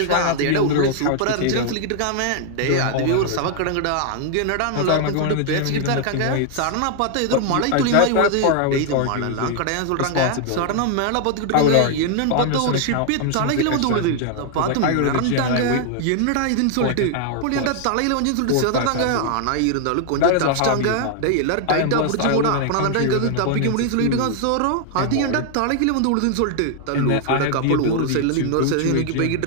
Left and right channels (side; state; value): both; different; correlation 0.00